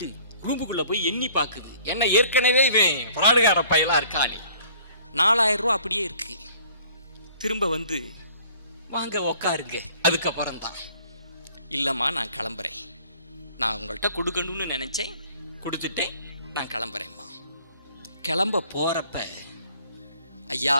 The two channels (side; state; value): both; inverted; correlation -0.55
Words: ரூமுக்குள்ள போய் எண்ணி பாக்குது. என்ன ஏற்கனவே இவன் பிராடுகார பயலா இருக்கானே, 4,000 ரூபா அப்படியே இருக்கு. திரும்ப வந்து வாங்க உக்காருங்க. அதுக்கப்புறம் தான், இல்லைம்மா நான் கிளம்புறேன், நான் உங்கள்கிட்ட கொடுக்கணும்னு நினைச்சேன், கொடுத்துட்டு நான் கிளம்புறேம்மா. கிளம்ப போறப்ப ஐயா